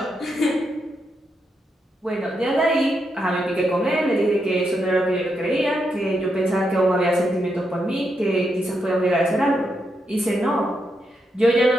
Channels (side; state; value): both; normal; correlation 0.83